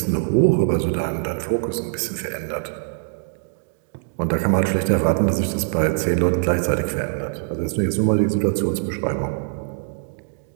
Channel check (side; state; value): left; silent; digital silence